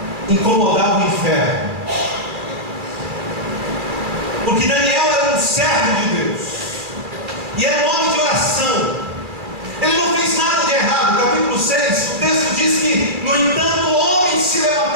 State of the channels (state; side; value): late; left; 2.4 ms